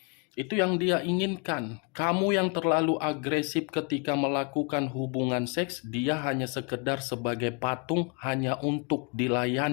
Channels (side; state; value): right; quieter; 34.4 dB